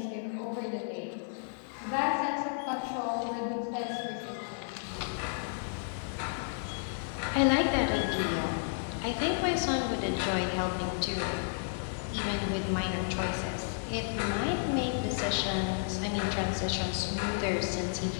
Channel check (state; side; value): silent; right; digital silence